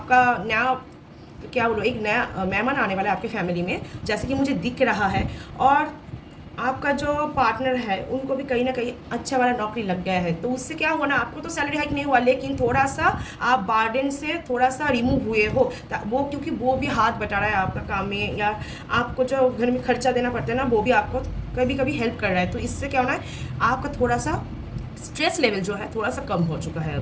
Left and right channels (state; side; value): identical; both; correlation 1.00